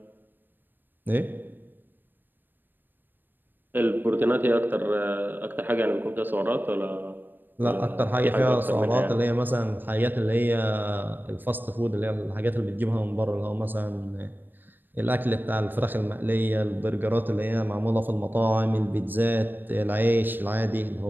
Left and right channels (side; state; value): left; late; 0.093 ms